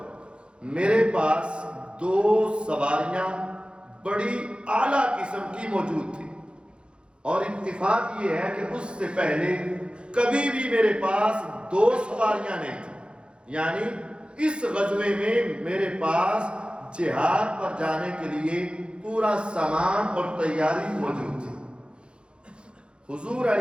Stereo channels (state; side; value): late; left; 0.055 ms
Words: میرے پاس 2 سواریاں بڑی اعلیٰ قسم کی موجود تھی، اور اتفاق یہ ہے کہ اس سے پہلے کبھی بھی میرے پاس 2 سواریاں نہیں تھیں، یعنی اس غزوے میں میرے پاس جہاد پر جانے کے لیے پورا سامان اور تیاری موجود تھی۔ حضور